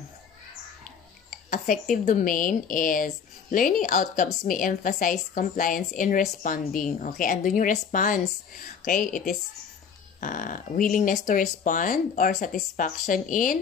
affective domain is learning outcomes may emphasize compliance in responding. Okay, andun yung response. Okay, it is willingness to respond or satisfaction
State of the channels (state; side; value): quieter; right; 6.7 dB